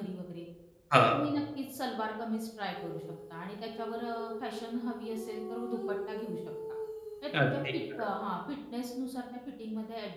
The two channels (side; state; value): both; identical; correlation 1.00